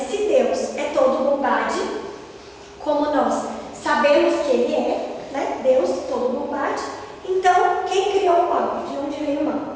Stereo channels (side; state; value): both; identical; correlation 1.00